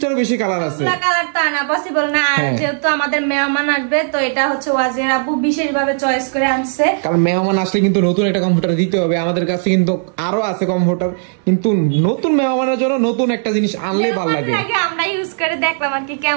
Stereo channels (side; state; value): left; silent; 63 dB below the other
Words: বেশি কালার আছে। কালার তো আনা পসিবল না, আর যেহেতু আমাদের মেহমান আসবে তো এটা হচ্ছে ওয়াজির আপু বিশেষভাবে চয়েস করে আনছে। কারণ মেহমান আসলে কিন্তু নতুন একটা কমফোর্টার দিতে হবে। আমাদের কাছে কিন্তু আরো আছে কমফোর্টার, কিন্তু নতুন মেহমানের জন্য নতুন একটা জিনিস আনলে ভালো লাগে। আমরা ইউজ করে দেখলাম আর কি